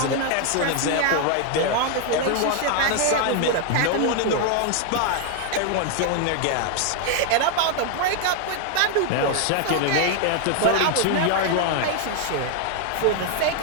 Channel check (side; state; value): both; different; correlation 0.00